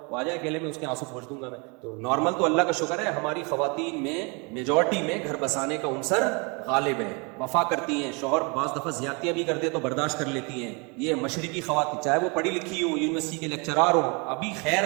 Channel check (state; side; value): quieter; left; 31.3 dB